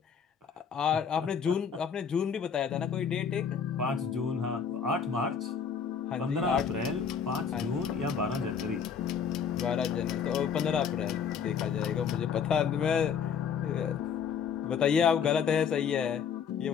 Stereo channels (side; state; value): right; quieter; 6.9 dB